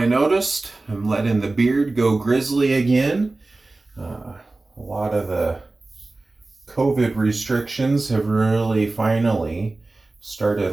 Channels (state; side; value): quieter; left; 3.2 dB